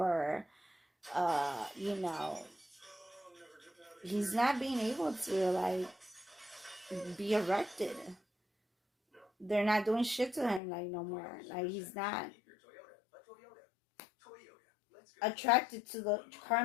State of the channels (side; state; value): right; drops out; at 10.6 s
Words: he's not being able to like be erected. They're not doing shit to him like no more. Like, he's not attracted to the